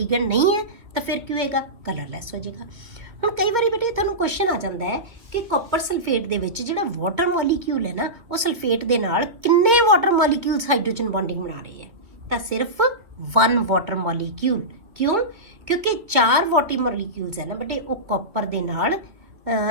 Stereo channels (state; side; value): late; left; 2.5 ms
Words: ਨਹੀਂ ਹੈ ਤਾਂ ਫਿਰ ਕੀ ਹੋਏਗਾ? ਕਲਰਲੈਸ ਹੋ ਜਾਏਗਾ। ਹੁਣ ਕਈ ਵਾਰੀ ਬੇਟੇ ਤੁਹਾਨੂੰ ਕੁਐਸਚਨ ਆ ਜਾਂਦਾ ਹੈ ਕਿ ਕਾਪਰ ਸਲਫੇਟ ਦੇ ਵਿੱਚ ਜਿਹੜਾ ਵਾਟਰ ਮੋਲੀਕਿਊਲ ਹੈ ਨਾ ਉਹ ਸਲਫੇਟ ਦੇ ਨਾਲ ਕਿੰਨੇ ਵਾਟਰ ਮੋਲੀਕਿਊਲਸ ਹਾਈਡਰੋਜਨ ਬੌਂਡਿੰਗ ਬਣਾ ਰਹੇ ਹੈ? ਤਾਂ ਸਿਰਫ 1 ਵਾਟਰ ਮੋਲੀਕਿਊਲ। ਕਿਉਂ? ਕਿਉਂਕਿ 4 ਵਾਟਰ ਮੋਲੀਕਿਊਲਸ ਹੈ ਨਾ ਬੇਟੇ ਉਹ ਕਾਪਰ ਦੇ ਨਾਲ